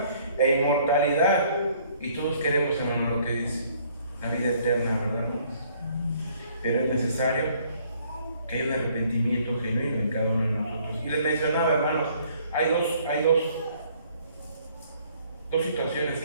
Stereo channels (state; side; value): inverted; both; correlation -0.62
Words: e inmortalidad. Y todos queremos, hermano, lo que dice, la vida eterna, ¿verdad, hermanos? Pero es necesario que haya un arrepentimiento genuino en cada uno de nosotros. Y les mencionaba, hermanos, hay dos situaciones